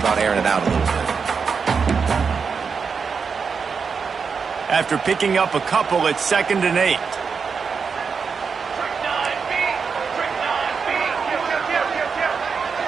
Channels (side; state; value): left; quieter; 5.6 dB